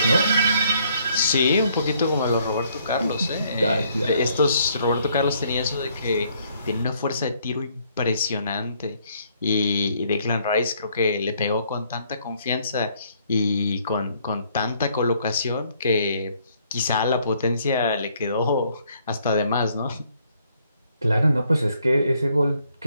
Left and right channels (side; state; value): both; inverted; correlation -0.67